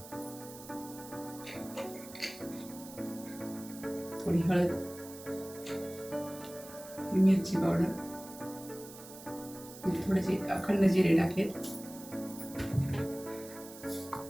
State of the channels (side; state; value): right; noise; hiss, 16 dB below the sound